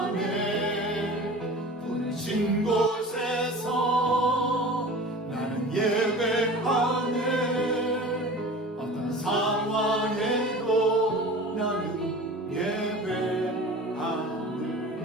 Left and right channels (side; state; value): both; normal; correlation 0.39